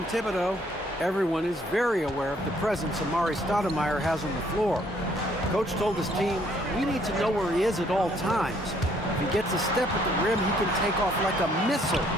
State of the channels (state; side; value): normal; both; correlation 0.65